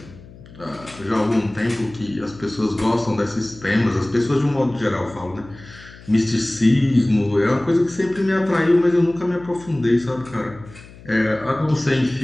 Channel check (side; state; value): left; noise; hum, 20 dB below the sound